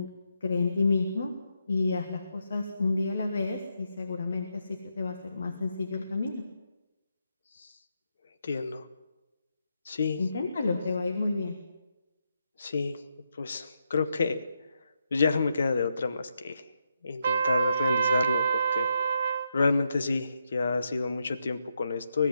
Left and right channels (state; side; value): inverted; both; correlation -0.82